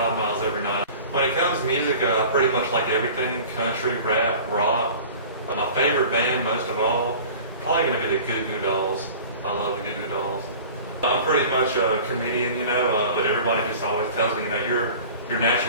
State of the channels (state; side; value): inverted; both; correlation -0.41